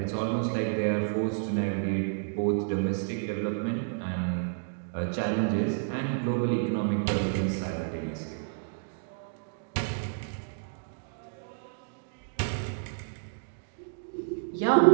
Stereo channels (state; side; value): silent; left; digital silence